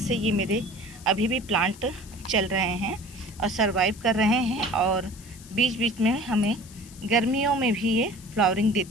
ये मेरे अभी भी प्लांट चल रहे हैं और सरवाइव कर रहे हैं। और बीच बीच में हमें गर्मियों में भी ये फ्लावरिंग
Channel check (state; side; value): noise; left; hiss, 20 dB below the sound